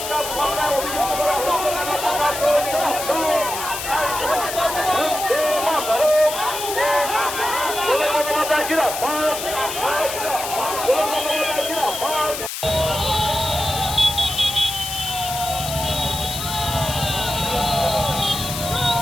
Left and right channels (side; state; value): left; noise; hiss, 6 dB below the sound